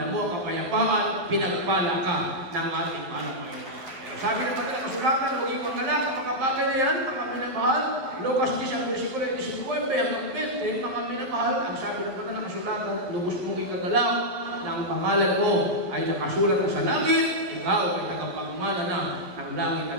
kapayapaan, pinagpala ka ng ating mahal na Panginoon. Sabi ng mga kasulatan, huwag yung mangalak ang mga bagay na yan, mga minamahal. Lucas 10 ang versikulo 19 hanggang 20, mga minamahal, ang sabi ng mga kasulatan, lubos mong ikagalak na ang pangalan mo ay nakasulat na sa langit, ikaw ay tagapagmana na ng langit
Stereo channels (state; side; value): late; left; 11 ms